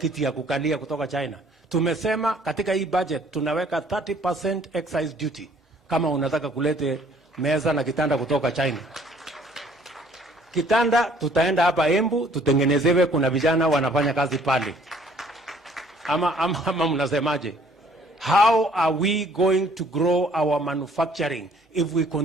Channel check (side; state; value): both; normal; correlation 0.59